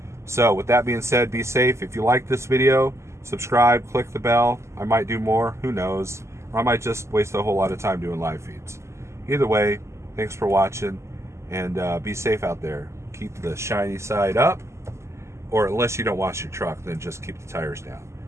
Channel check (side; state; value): left; late; 0.13 ms